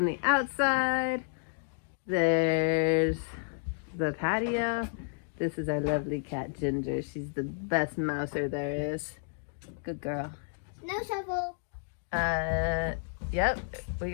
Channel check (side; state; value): right; silent; digital silence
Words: the outside. There's the patio. This is our lovely cat, Ginger. She's the best mouser there is. Good girl. No shovel. Yep, we